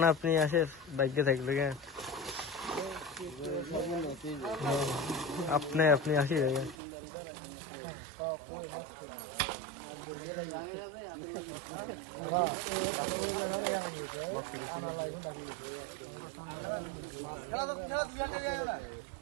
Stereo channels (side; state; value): left; drops out; at 6.8 s